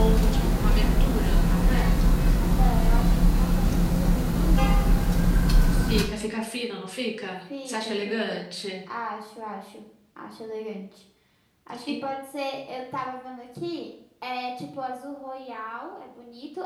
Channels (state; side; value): identical; both; correlation 1.00